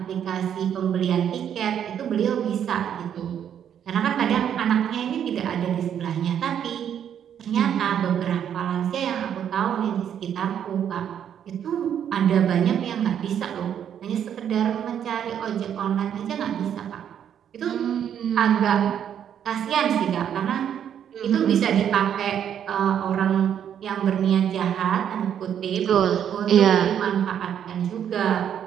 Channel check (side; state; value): left; quieter; 9.2 dB